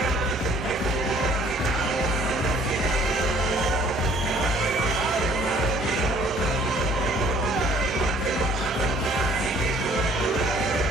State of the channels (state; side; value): normal; both; correlation 0.57